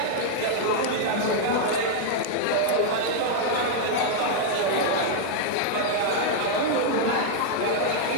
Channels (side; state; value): both; different; correlation -0.01